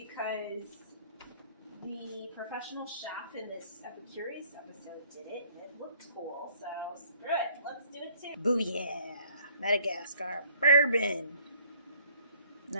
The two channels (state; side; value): inverted; both; correlation -0.59